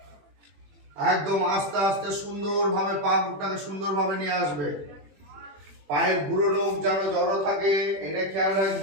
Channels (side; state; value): left; late; 21 ms